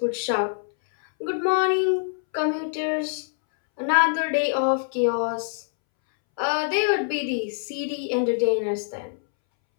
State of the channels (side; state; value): right; silent; 62 dB below the other